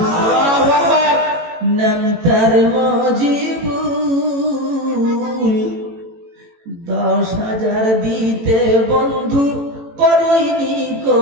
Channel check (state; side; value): late; left; 18 ms